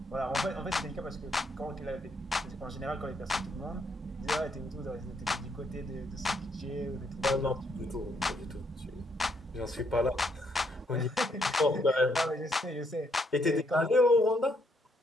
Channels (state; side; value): normal; both; correlation 0.72